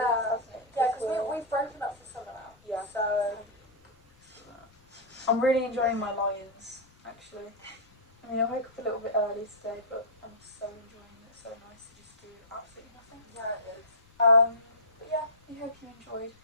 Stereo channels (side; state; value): left; noise; rumble, 30 dB below the sound